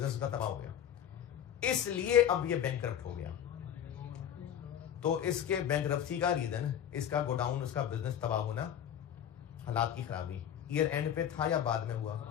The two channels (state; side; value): quieter; right; 9.7 dB